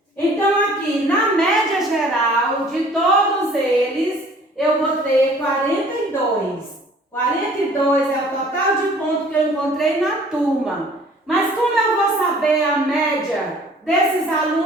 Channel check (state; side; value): normal; both; correlation 0.53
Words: Então, aqui, na média geral de todos eles, eu vou ter 42. 42 é o total de pontos que eu encontrei na turma. Mas como eu vou saber a média desses